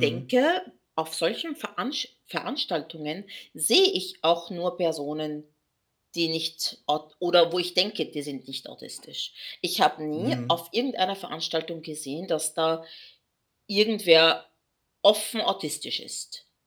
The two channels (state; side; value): identical; both; correlation 1.00